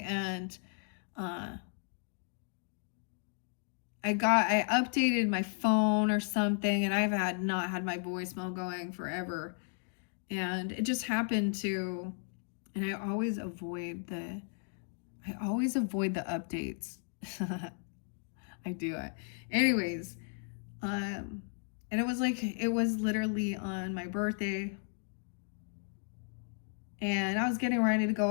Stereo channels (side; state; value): right; silent; 55 dB below the other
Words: and I updated my phone or something, and I've not had my voicemail going forever. And it just happened to, and I always avoid the updates. I do it. Anyways, and it was literally on my birthday. And I was getting ready to go